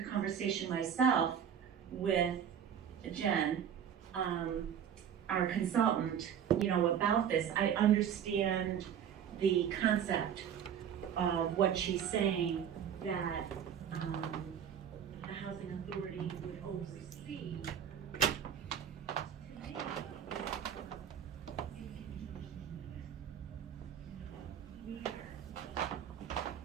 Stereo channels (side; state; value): left; quieter; 8.7 dB